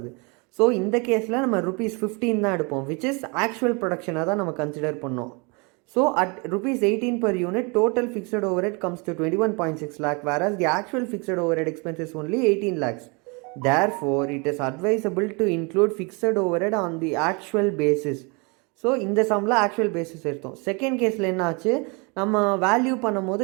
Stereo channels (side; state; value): left; quieter; 30.8 dB